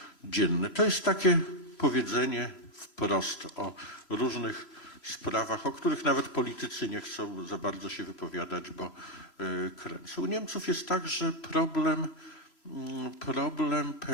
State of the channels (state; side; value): late; right; 3.0 ms